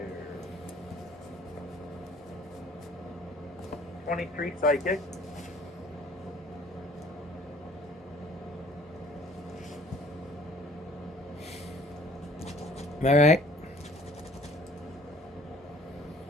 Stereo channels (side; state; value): both; normal; correlation 0.54